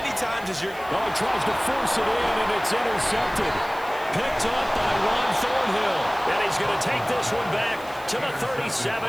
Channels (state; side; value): noise; right; hiss, 21 dB below the sound